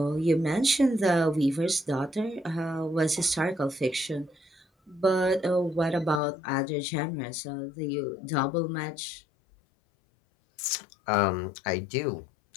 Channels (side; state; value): right; drops out; at 6.2 s